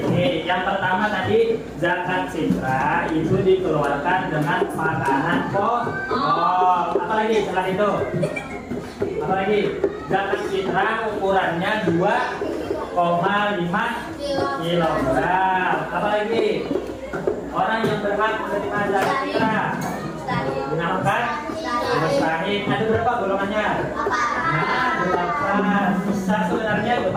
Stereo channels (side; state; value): both; identical; correlation 1.00